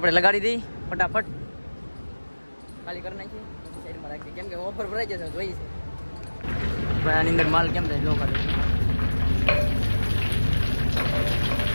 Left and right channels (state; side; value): inverted; both; correlation -1.00